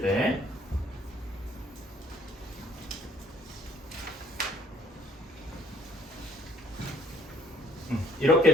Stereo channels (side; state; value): both; normal; correlation 0.60